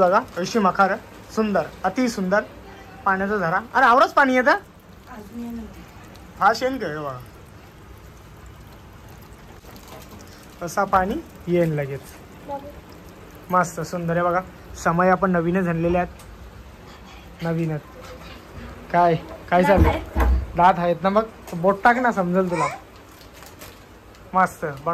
अशी मखार सुंदर अति सुंदर पाण्याचा झरा. अरे आवरच पाणी येतं. हा शेण काय बघा. तसा पाणी येईन लगेच. मस्त सुंदर आहे बघा. समय आपण नवीनच आणलेले आहेत. नवीनच काय काय चाललंय. दात आहेत ना मग बोट टाक ना समजेल तुला. मस्त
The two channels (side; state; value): both; identical; correlation 1.00